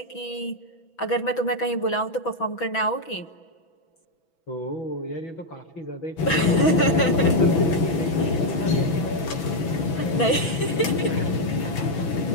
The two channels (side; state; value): right; late; 6.0 ms